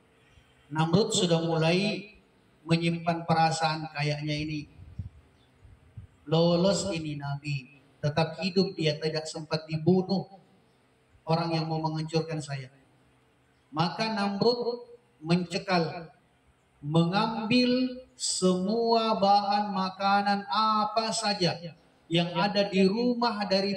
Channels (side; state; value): both; identical; correlation 1.00